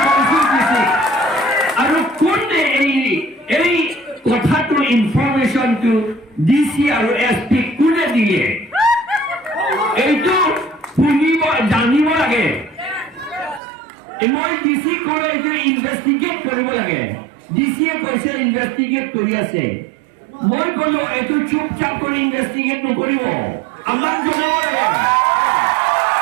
কনফিউজ দিছে আৰু কোনে এই কথাটো ইনফৰমেশ্যনটো ডিচি আৰু এছপি কোনে দিয়ে এইটো শুনিব জানিব লাগে মই ডিচি কৰে এইটো ইনভেষ্টিগেট কৰিব লাগে ডিচিয়ে কৈছে ইনভেষ্টিগেট কৰি আছে মই ক'লো এইটো চুপচাপ কৰি ইনভেষ্টিগেট নকৰিব আমাক জনাব লাগে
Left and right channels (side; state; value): left; drops out; at 13.6 s